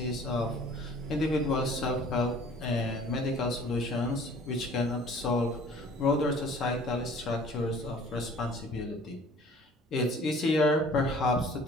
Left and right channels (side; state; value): both; normal; correlation 0.51